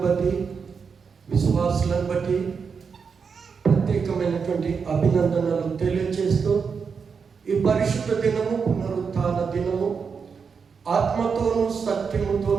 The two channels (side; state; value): left; quieter; 5.8 dB